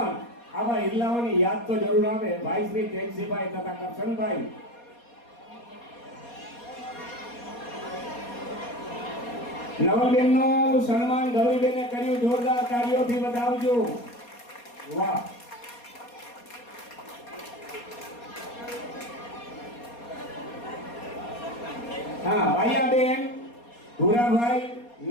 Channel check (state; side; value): late; right; 4.2 ms